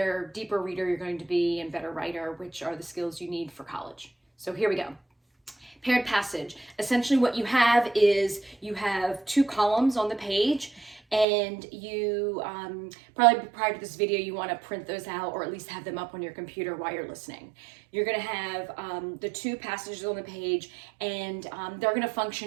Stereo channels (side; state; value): left; drops out; at 11.2 s